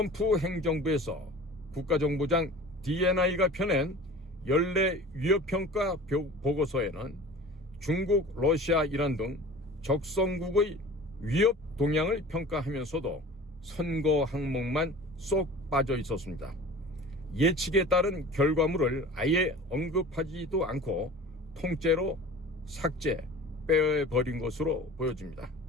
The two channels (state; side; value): normal; both; correlation 0.40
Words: 행정부에서 국가정보장 DNI가 펴낸 연례 위협평가 보고서에는 중국, 러시아, 이란 등 적성국의 위협 동향을 평가하면서도 선거 항목만 쏙 빠져 있었습니다. 예측에 따른 결과물을 아예 언급하지도 않고 통째로 삭제, 빼버린 것으로 보여집니다.